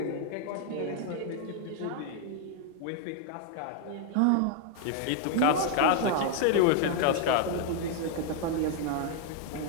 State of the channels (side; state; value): both; different; correlation 0.00